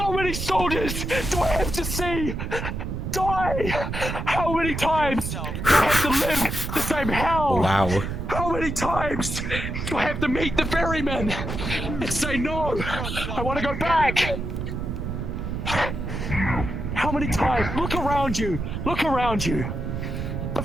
many soldiers do I have to see die? How many times do I have to live the same hell? Wow. How many times do I have to meet the ferryman and say no? I want to go back. How many times? Look around you. Look around you. The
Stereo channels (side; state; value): right; noise; rumble, 4 dB below the sound